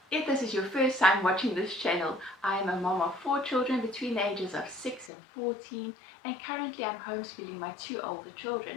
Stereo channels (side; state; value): right; drops out; at 5.1 s